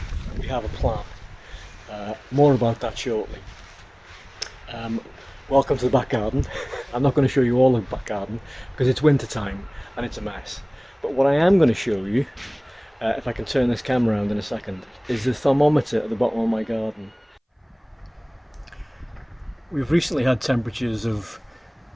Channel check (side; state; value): both; identical; correlation 1.00